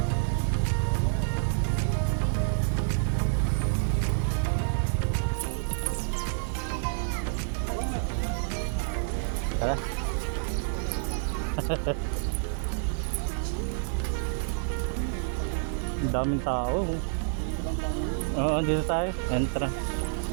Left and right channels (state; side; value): silent; left; digital silence